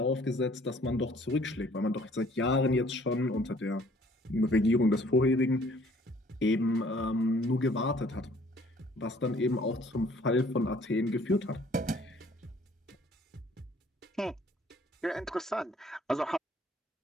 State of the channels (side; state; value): both; normal; correlation 0.58